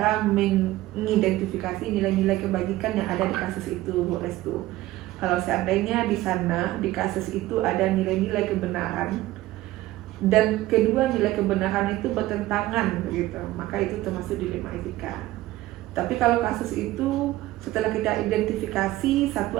mengidentifikasi nilai-nilai kebajikan yang ada di kasus itu, Bu Restu. Kalau seandainya di sana, di kasus itu ada nilai-nilai kebenaran, dan kedua nilai kebenaran itu bertentangan, begitu, maka itu termasuk dilema etika. Tapi kalau kasus itu setelah kita identifikasi, satu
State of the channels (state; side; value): quieter; left; 16.6 dB